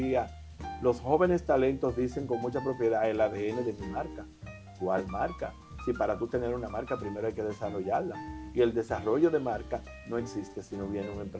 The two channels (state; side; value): identical; both; correlation 1.00